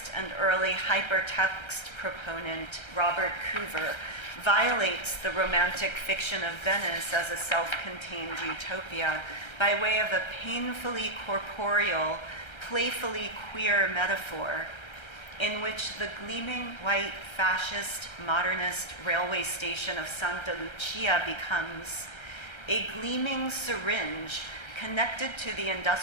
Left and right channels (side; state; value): right; late; 1.3 ms